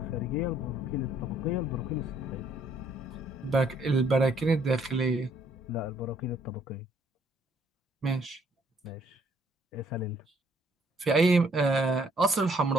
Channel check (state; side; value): normal; both; correlation 0.65